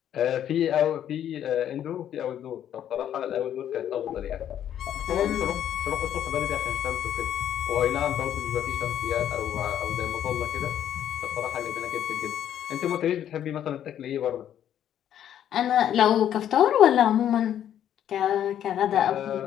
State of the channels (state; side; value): quieter; right; 10.4 dB